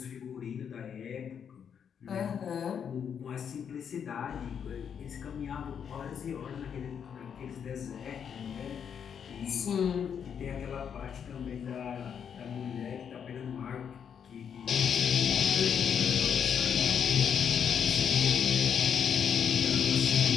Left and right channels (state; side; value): quieter; right; 7.7 dB